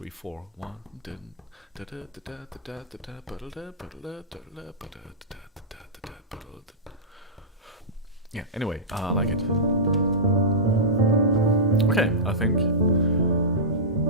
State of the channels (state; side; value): normal; both; correlation -0.15